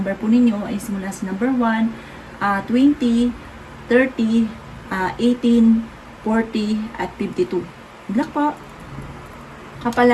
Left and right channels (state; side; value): identical; both; correlation 1.00